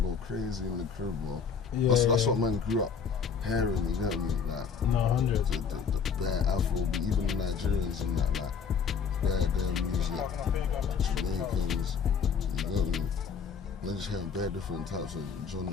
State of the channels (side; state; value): right; quieter; 6.3 dB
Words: crazy in the crib, bro. That's what man grew up hearing, you get me? Like, no, 100. The bare Afro, even the Nigerians and that, like, bare music, Jamaicans, you get me? They're just hearing bare different types of